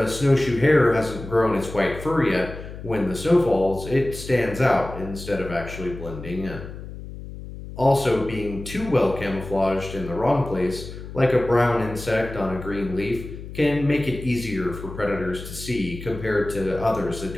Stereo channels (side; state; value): left; noise; hum, 12 dB below the sound